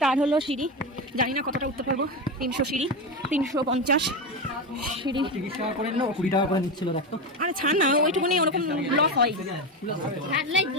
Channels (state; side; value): normal; both; correlation 0.16